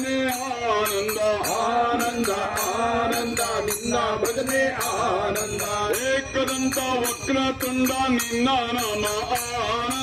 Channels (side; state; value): both; identical; correlation 1.00